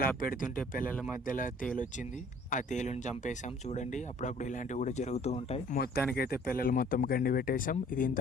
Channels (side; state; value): both; normal; correlation 0.55